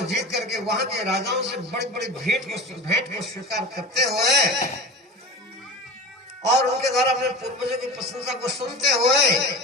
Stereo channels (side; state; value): both; normal; correlation 0.32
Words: जीत करके वहां के राजाओं से बड़ी बड़ी भेंट को स्वीकार करते हुए और उनके द्वारा अपने पूर्वजों की प्रशंसा को सुनते हुए